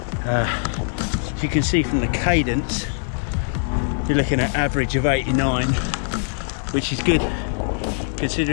As you can see from the cadence, you're looking at average of 89, which is good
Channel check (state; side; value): silent; right; digital silence